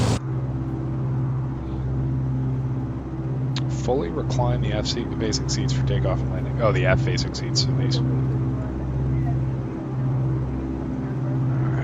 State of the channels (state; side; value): identical; both; correlation 1.00